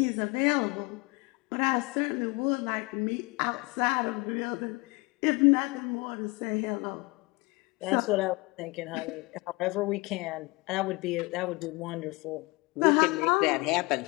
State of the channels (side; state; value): right; quieter; 25.5 dB